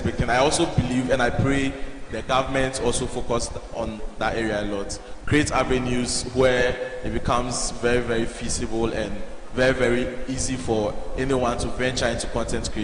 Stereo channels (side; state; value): both; identical; correlation 1.00